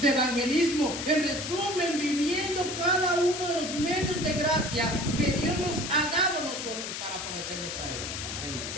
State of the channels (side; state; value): left; noise; hiss, 6 dB below the sound